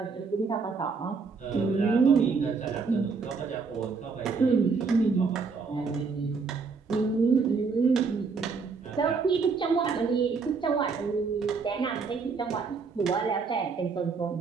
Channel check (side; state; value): left; quieter; 4.9 dB